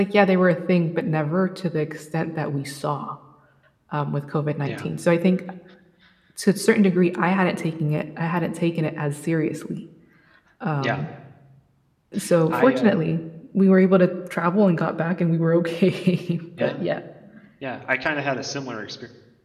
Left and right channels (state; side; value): identical; both; correlation 1.00